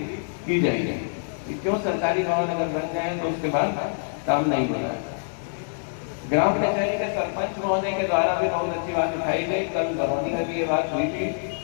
की जाएगी। क्यों सरकारी भवन अगर बन जाए तो उसके बाद काम नहीं हो रहा है। ग्राम कचहरी के सरपंच महोदय के द्वारा भी बहुत अच्छी बात उठाई गई, कल बरौनी में भी ये बात हुई थी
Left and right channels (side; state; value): right; silent; digital silence